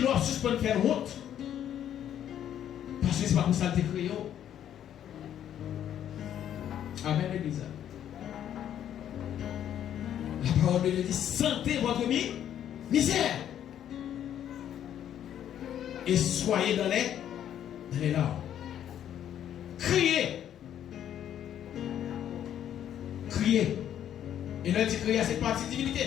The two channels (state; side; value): quieter; right; 10.3 dB